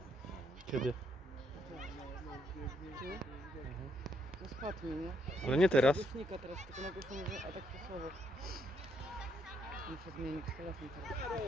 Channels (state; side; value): normal; both; correlation 0.74